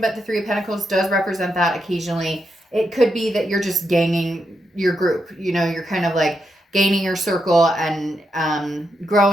the Three of Pentacles does represent that occasionally. It could be that you're just gaining your group. You're kind of like gaining your circle and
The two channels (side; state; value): both; normal; correlation 0.83